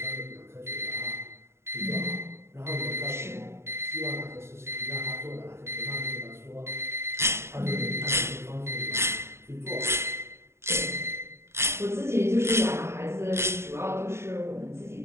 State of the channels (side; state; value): left; late; 0.13 ms